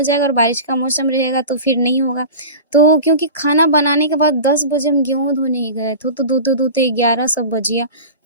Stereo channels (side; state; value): both; inverted; correlation -0.33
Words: जाएगा और बारिश का मौसम रहेगा तो फिर नहीं होगा। तो क्योंकि खाना बनाने के बाद 10 बजे हम गेहूँ धोने ही गए थे, तो धोते-धोते 11 सब बज गया।